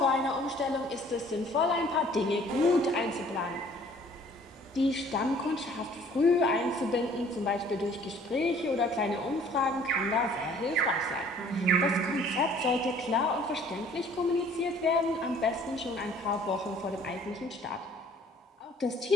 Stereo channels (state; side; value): normal; both; correlation 0.55